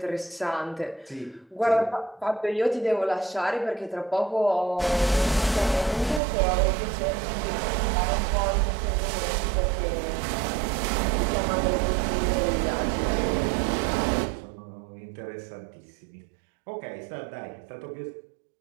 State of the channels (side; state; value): left; drops out; at 6.2 s